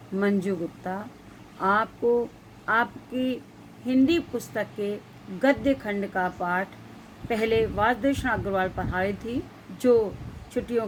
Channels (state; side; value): identical; both; correlation 1.00